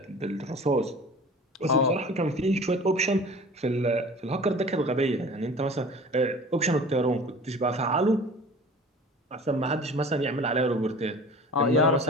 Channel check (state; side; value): normal; both; correlation 0.42